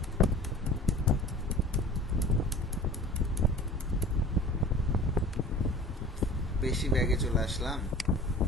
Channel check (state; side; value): normal; both; correlation 0.42